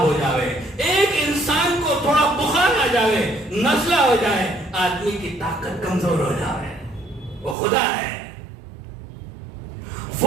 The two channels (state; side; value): drops out; left; at 7.6 s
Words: ہو جائے، ایک انسان کو تھوڑا بخار آ جائے، نزلہ ہو جائے، آدمی کی طاقت کمزور ہو جائے. وہ خدا ہے،